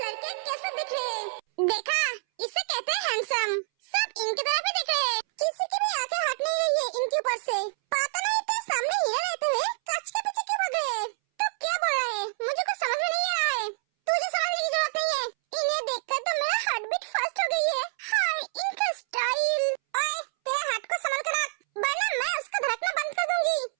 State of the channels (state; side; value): silent; left; 60 dB below the other